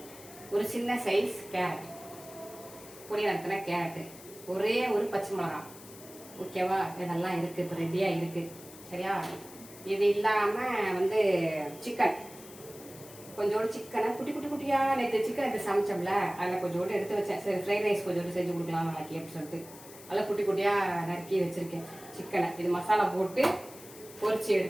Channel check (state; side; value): noise; left; hiss, 18 dB below the sound